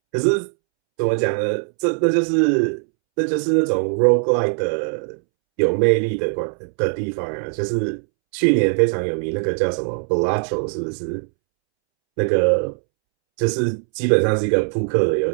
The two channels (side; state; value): left; silent; 66 dB below the other